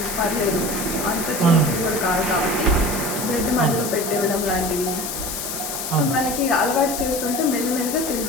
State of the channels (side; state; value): left; noise; hiss, 5 dB below the sound